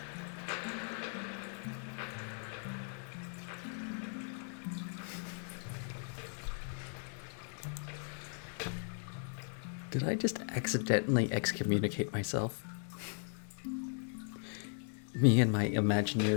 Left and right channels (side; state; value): right; silent; 53 dB below the other